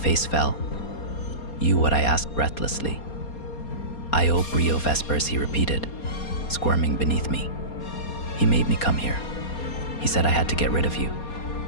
fell. You, what I asked breathlessly. Io Brio Vespers, he repeated, squirming beneath me. He made me come here. He said I had to get rid of you.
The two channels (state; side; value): late; right; 4.3 ms